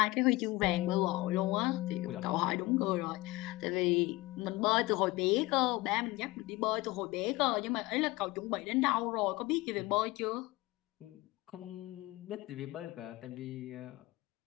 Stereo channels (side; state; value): right; quieter; 20.5 dB